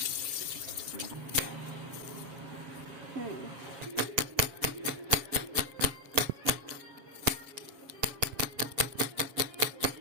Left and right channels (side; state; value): left; late; 7.4 ms